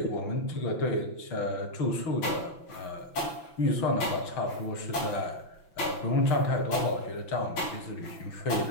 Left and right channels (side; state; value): right; late; 5.9 ms